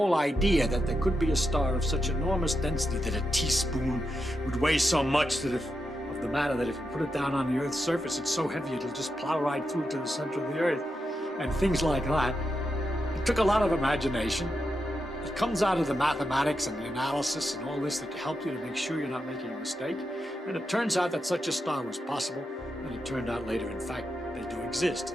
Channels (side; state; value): both; normal; correlation 0.86